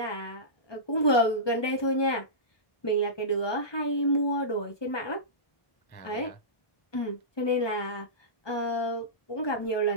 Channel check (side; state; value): right; late; 1.2 ms